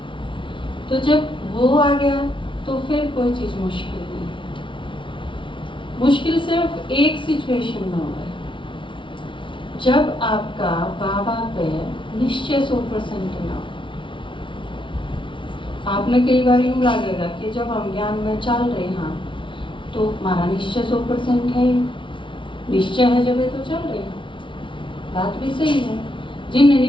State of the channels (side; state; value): right; late; 0.24 ms